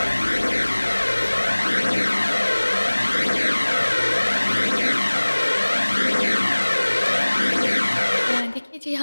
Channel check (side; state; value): both; inverted; correlation -1.00